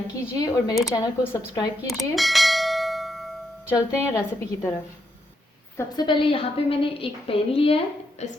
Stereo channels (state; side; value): normal; both; correlation 0.80